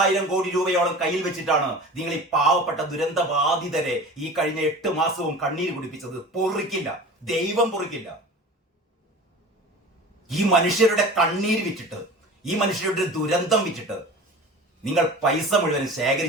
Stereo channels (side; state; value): both; normal; correlation 0.38